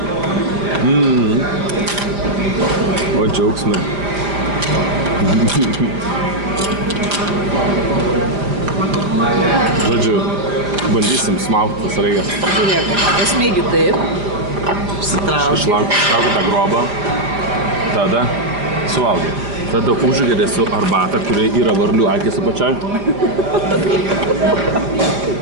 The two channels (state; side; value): late; left; 4.9 ms